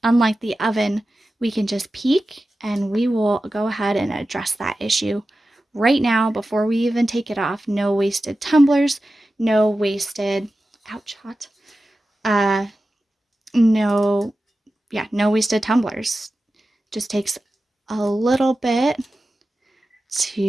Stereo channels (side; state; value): both; normal; correlation 0.94